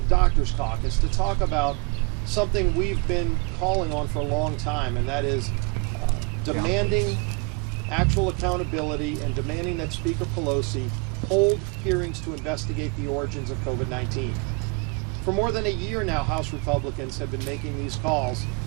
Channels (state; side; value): quieter; left; 33.0 dB